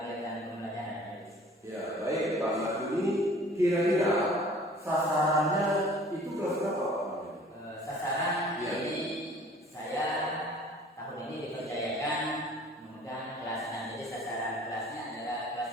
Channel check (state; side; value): normal; both; correlation 0.50